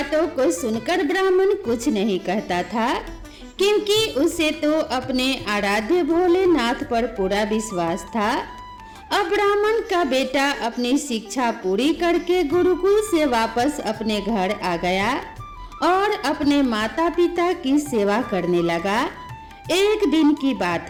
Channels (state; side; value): identical; both; correlation 1.00